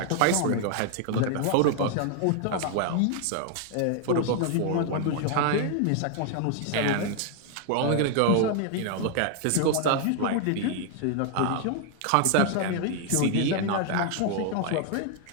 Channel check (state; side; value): different; both; correlation 0.00